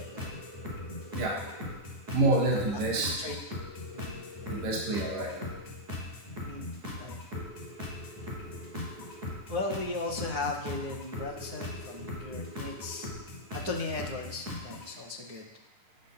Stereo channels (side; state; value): left; late; 9.7 ms